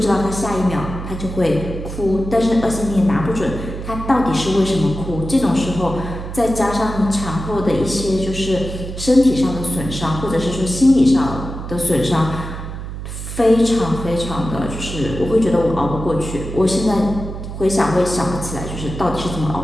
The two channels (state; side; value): noise; right; hum, 8 dB below the sound